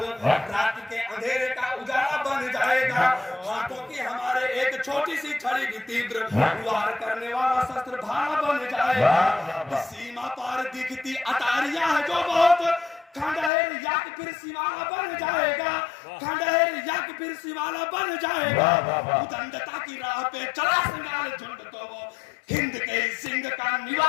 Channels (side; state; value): right; drops out; at 13.5 s